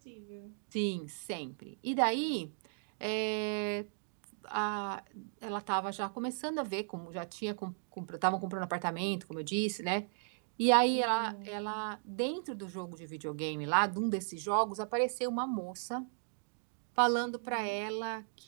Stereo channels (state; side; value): silent; left; digital silence